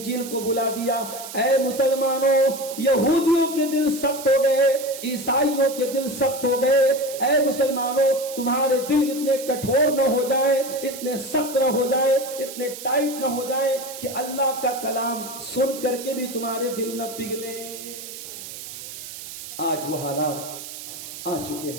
کو بھلا دیا۔ اے مسلمانوں یہودیوں کے دل سخت ہو گئے، عیسائیوں کے دل سخت ہو گئے۔ اے مسلمانوں تمہارے دل اتنے کٹھور نہ ہو جائے، اتنے سخت نہ ہو جائے، اتنے ٹائٹ نہ ہو جائے کہ اللہ کا کلام سن کر کے بھی تمہارے دل نہ پگھلے۔ آج وہ حالات آ چکے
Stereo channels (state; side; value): noise; right; hiss, 11 dB below the sound